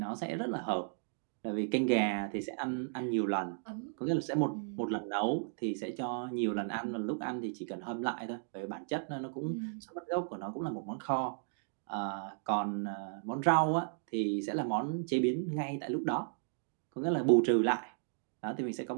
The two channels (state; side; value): silent; left; digital silence